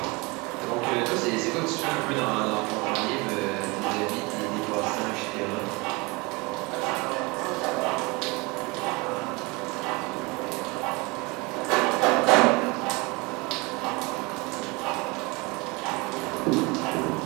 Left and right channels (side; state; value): left; quieter; 26.1 dB